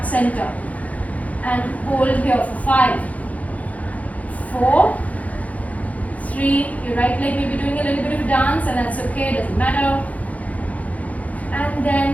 center and hold here for 5, 4, 3. Your right leg may be doing a little bit of a dance, and that's okay, doesn't matter. And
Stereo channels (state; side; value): late; right; 0.070 ms